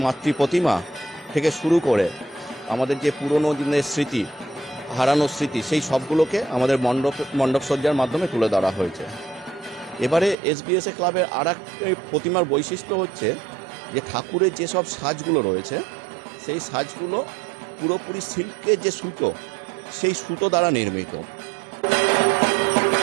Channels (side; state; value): left; drops out; at 10.4 s